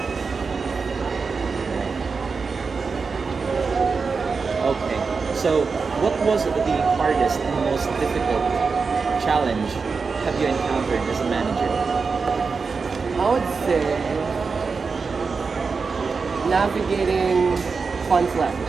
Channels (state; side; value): quieter; left; 4.9 dB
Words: Okay. So, what was the hardest and most difficult challenge have you encountered as a manager? I would say navigating